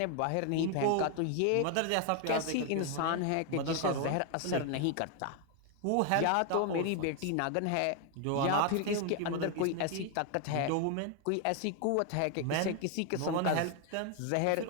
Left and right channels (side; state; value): both; different; correlation 0.01